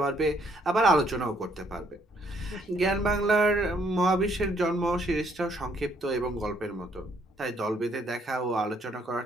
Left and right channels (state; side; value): normal; both; correlation 0.68